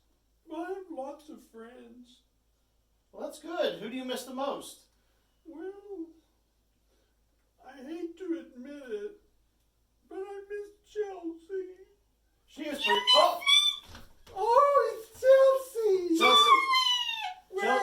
I have lots of friends. Well, that's good. Who do you miss the most? Well, I hate to admit it, but I miss Chelsea. She is pretty... Oh! Oh, it's Chelsea! Chelsea!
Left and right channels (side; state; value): both; identical; correlation 1.00